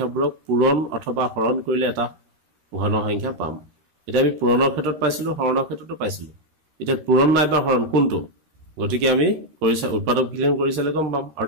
পূৰণ অথবা হৰণ কৰিলে এটা ঘন সংখ্যা পাম এটা আমি পূৰণৰ ক্ষেত্ৰত পাইছিলো হৰণৰ ক্ষেত্ৰতো পাইছিলো এটা পূৰণ নাইবা হৰণ কোনটো গতিকে আমি কৰিছা উৎপাদক বিশ্লেষণ কৰিছালে গম পাম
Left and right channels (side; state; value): left; late; 13 ms